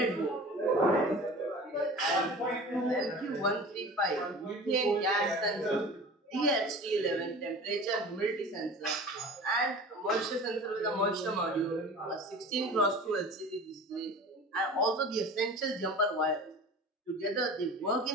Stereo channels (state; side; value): normal; both; correlation 0.39